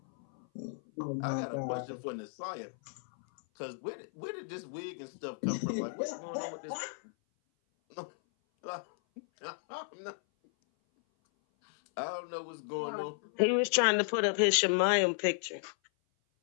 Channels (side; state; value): right; silent; 55 dB below the other